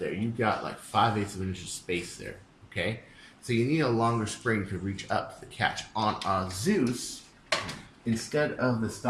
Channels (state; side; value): identical; both; correlation 1.00